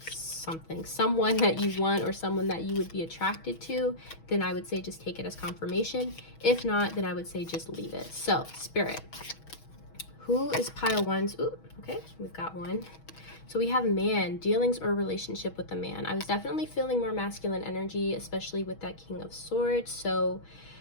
you want, or someone that you would be attracted to, then I would say just take it as confirmation. If not, then I would say just leave it. So, Spirit, who is pile 1's? Ooh, okay, we've got 1. So we have man, dealings or relationship with a man. I was definitely feeling more masculine energy, especially with that King of Swords. So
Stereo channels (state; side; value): late; right; 6.2 ms